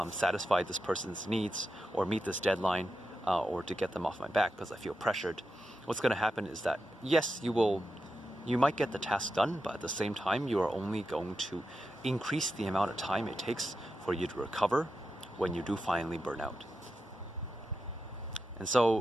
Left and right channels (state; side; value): normal; both; correlation 0.89